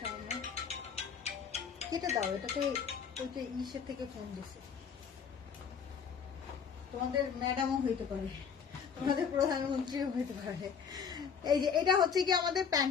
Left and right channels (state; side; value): quieter; right; 6.7 dB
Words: কেটে দাও, এটাতে ওইটা ইসের থেকে ফোন দিছে, তোমাদের ম্যাডামও হইতে পারে। আমাদের প্রধানমন্ত্রীও হতে পারে। এই যে এটা হচ্ছে কি আমাদের